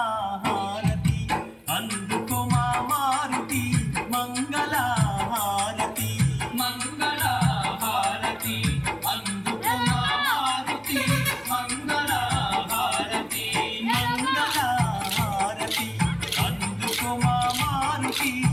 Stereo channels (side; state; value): both; identical; correlation 1.00